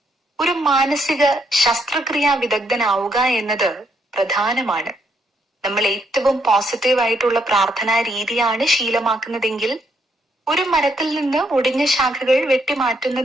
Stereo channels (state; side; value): normal; both; correlation 0.74